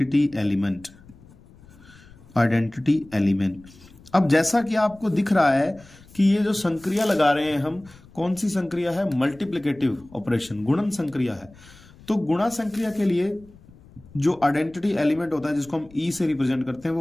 एलिमेंट, आइडेंटिटी एलिमेंट। अब जैसा कि आपको दिख रहा है कि ये जो संक्रिया लगा रहे हैं हम, कौन सी संक्रिया है? मल्टीप्लिकेटिव ऑपरेशन, गुणन संक्रिया है। तो गुणा संक्रिया के लिए जो आइडेंटिटी एलिमेंट होता है जिसको हम ई से रिप्रेजेंट करते हैं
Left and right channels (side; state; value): left; noise; rumble, 24 dB below the sound